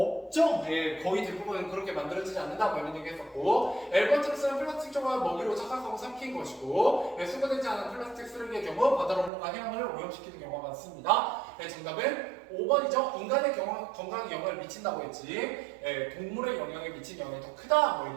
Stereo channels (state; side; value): drops out; left; at 9.3 s